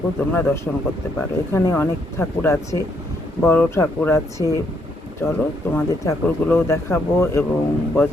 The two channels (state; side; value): normal; both; correlation 0.73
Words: তোমরা দর্শন করতে পারো। এখানে অনেক ঠাকুর আছে, বড় ঠাকুর আছে। চলো তোমাদের ঠাকুরগুলোও দেখাবো এবং